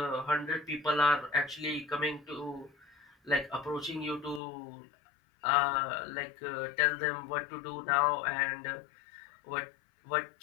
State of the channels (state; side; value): drops out; right; at 4.4 s